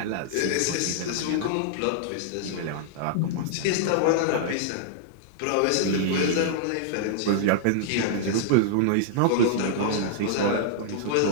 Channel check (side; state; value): both; different; correlation -0.01